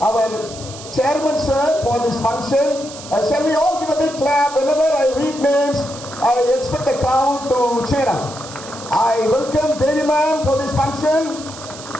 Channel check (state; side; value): noise; right; hiss, 14 dB below the sound